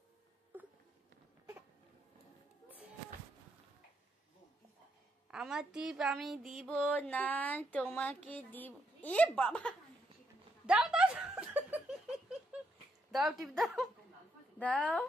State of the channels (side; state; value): both; normal; correlation 0.77